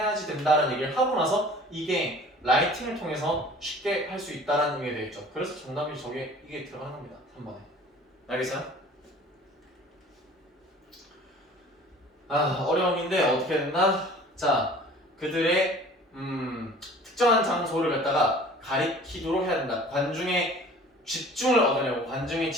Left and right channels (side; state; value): both; normal; correlation 0.47